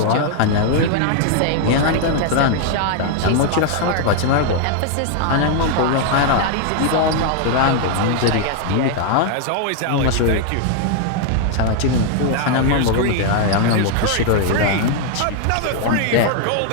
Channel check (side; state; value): both; different; correlation 0.00